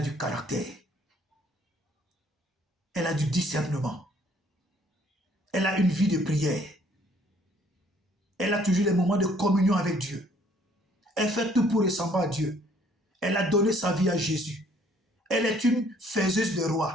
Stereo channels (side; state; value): both; normal; correlation 0.62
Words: du caractère. Elle a du discernement. Elle a une vie de prière. Elle a toujours des moments de communion avec Dieu. Elle fait tout pour ressembler à Dieu. Elle a donné sa vie à Jésus. Elle est une faiseuse de